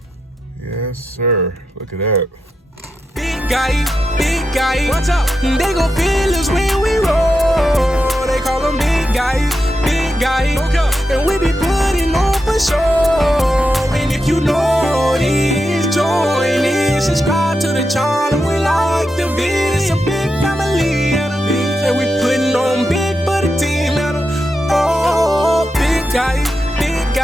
Yes, sir. Look at that. Big guy, what's up? They gon' feel us when we roll. They call them big guy, okay. And we be putting on for sure. And if you know this, join in, subscribe to the channel. We like the video, it's a big family, and we putting on big for the team. Oh, big guy,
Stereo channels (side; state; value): both; normal; correlation 0.87